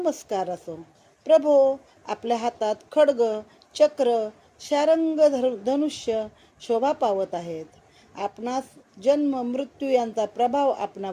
असो. प्रभो, आपल्या हातात खड्ग, चक्र, शारंग, धनुष्य शोभा पावत आहेत. आपणास जन्म मृत्यू यांचा प्रभाव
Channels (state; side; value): identical; both; correlation 1.00